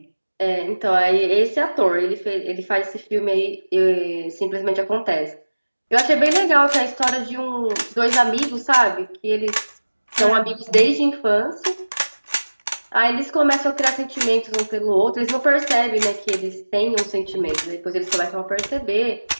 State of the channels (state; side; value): inverted; both; correlation -1.00